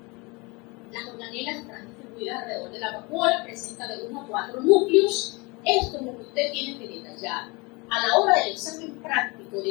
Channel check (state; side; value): quieter; right; 27.0 dB